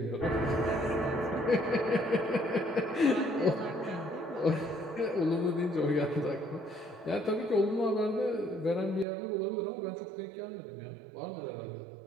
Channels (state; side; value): drops out; left; at 9.1 s